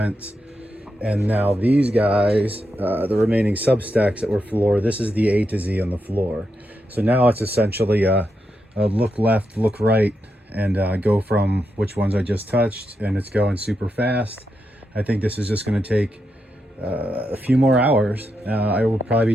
And now these guys, the remaining substacks that were floor, this is the A to Z on the floor. So now it's essentially a look left, look right, and go from which ones I just touched, and it's going super fast. I think this is just going to take a few more hours. I will probably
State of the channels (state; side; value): normal; both; correlation 0.85